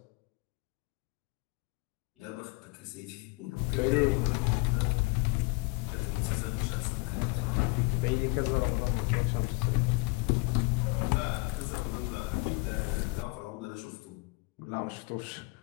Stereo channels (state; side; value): quieter; right; 27.8 dB